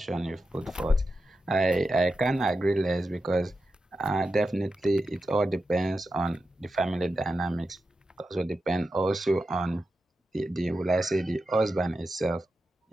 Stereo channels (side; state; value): both; normal; correlation 0.90